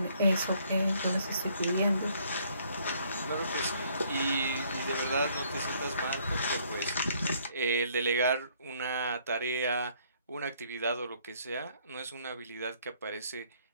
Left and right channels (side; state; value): both; inverted; correlation -0.64